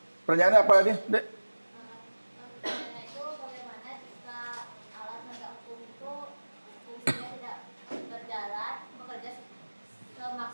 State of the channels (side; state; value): both; inverted; correlation -1.00